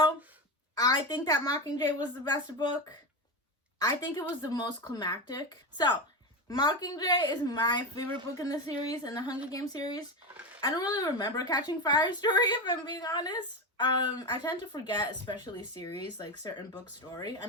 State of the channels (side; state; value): both; normal; correlation 0.17